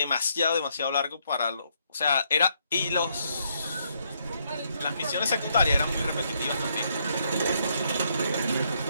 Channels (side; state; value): both; inverted; correlation -0.73